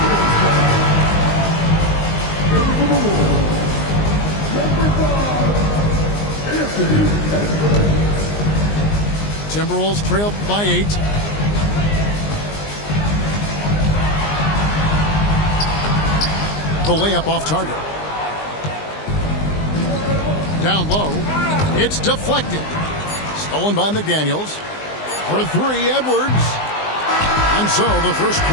Timberwolves trail by 8. The layup off target. Down low. It's deflected. Stolen by McDaniels. For 3, Edwards. And so the first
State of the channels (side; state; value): right; late; 19 ms